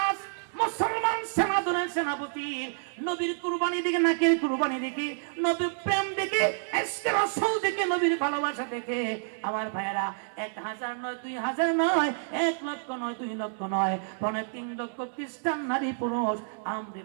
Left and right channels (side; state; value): left; silent; 59 dB below the other